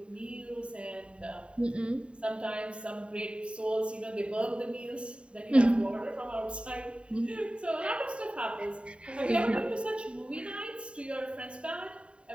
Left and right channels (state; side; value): late; left; 0.057 ms